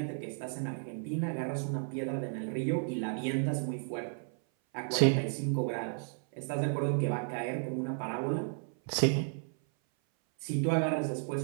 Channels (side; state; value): left; silent; 56 dB below the other